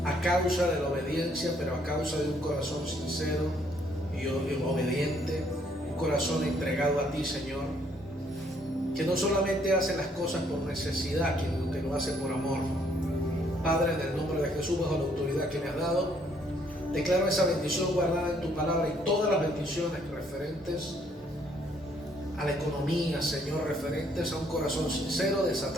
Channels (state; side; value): normal; both; correlation 0.67